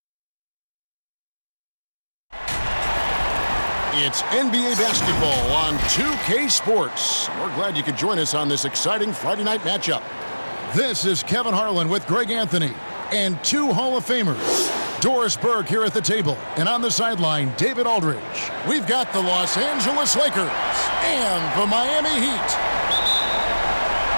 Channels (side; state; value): both; inverted; correlation -1.00